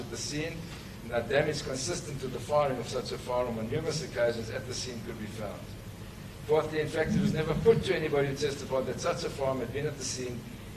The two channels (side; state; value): both; identical; correlation 1.00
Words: the scene, and no damage consistent with the firing of such a firearm on numerous occasions at the scene could be found. Fourthly, in fact, it was never put to anybody who testified that such a firearm had been at the scene